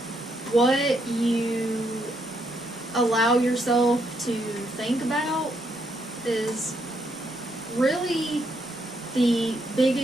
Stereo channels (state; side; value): normal; both; correlation 0.76